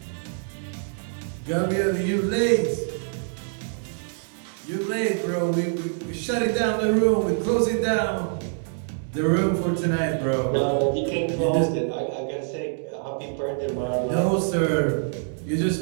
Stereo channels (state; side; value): silent; left; 62 dB below the other